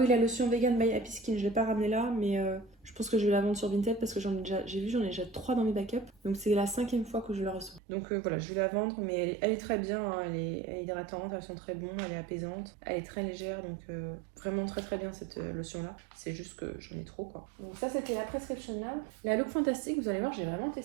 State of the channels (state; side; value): drops out; left; at 7.8 s